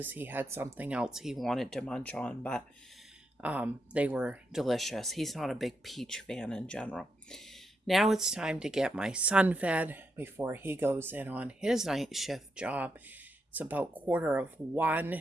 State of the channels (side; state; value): both; normal; correlation 0.83